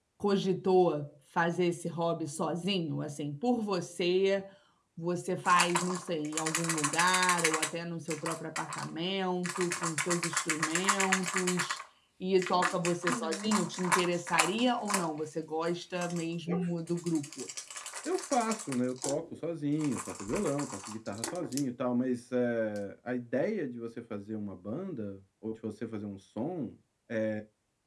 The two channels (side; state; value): both; identical; correlation 1.00